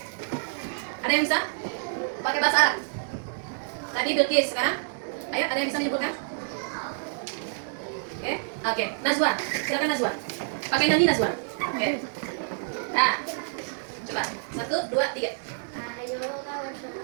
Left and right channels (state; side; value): silent; left; 59 dB below the other